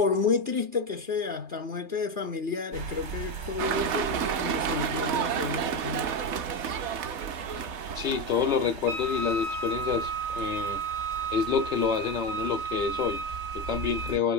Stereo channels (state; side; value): late; left; 3.3 ms